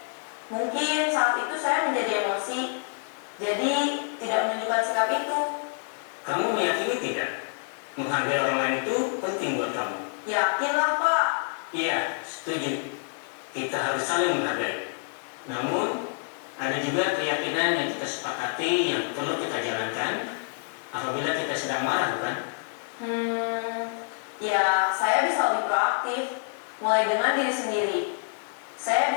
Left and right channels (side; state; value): right; silent; 59 dB below the other